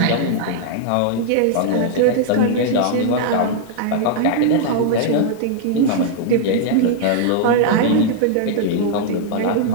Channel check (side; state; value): both; different; correlation -0.01